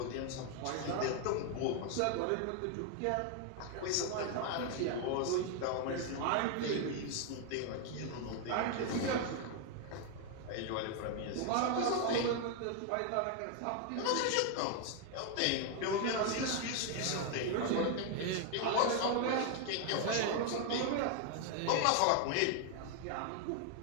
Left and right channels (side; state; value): both; different; correlation 0.00